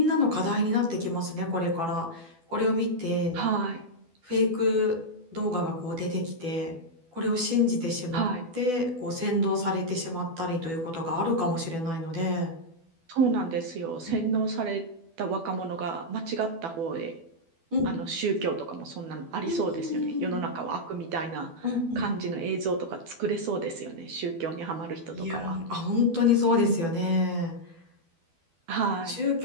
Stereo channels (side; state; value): left; late; 12 ms